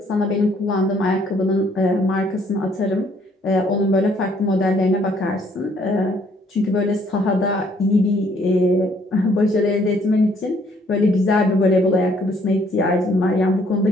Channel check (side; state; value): both; normal; correlation 0.64